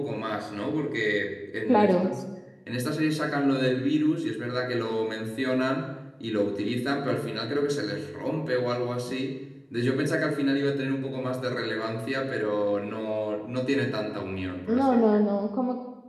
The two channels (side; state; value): both; identical; correlation 1.00